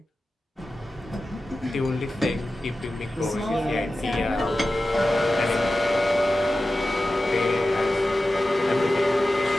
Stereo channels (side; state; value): both; normal; correlation 0.94